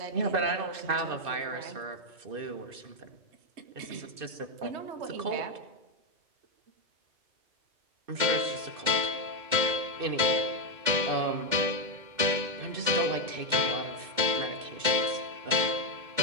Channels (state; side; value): late; left; 2.1 ms